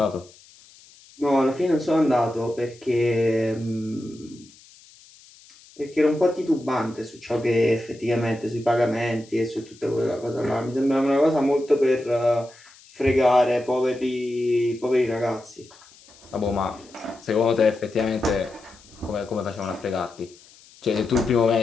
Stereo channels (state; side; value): noise; left; hiss, 25 dB below the sound